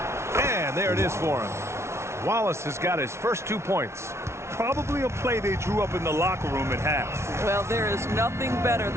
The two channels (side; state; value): left; late; 0.13 ms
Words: And there it is for him. Wallace has got his first 2 points. Probably a play they drew up in the locker room at half. Well, there is nothing better